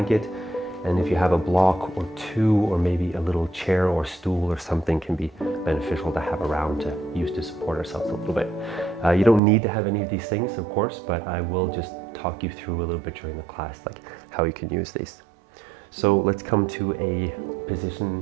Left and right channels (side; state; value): left; drops out; at 9.4 s